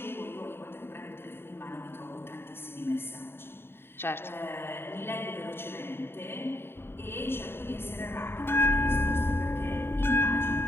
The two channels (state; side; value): late; right; 0.11 ms